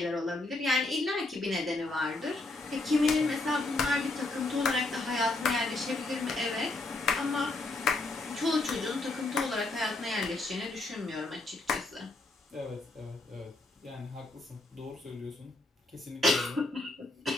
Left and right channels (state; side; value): quieter; right; 3.0 dB